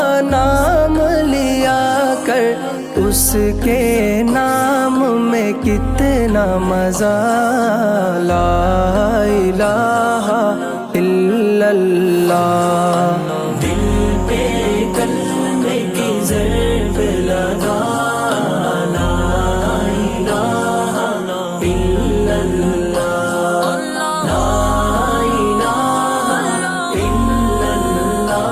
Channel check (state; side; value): identical; both; correlation 1.00